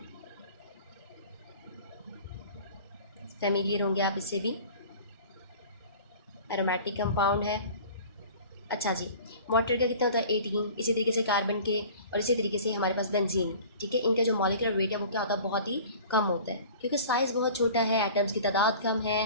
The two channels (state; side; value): inverted; both; correlation -0.43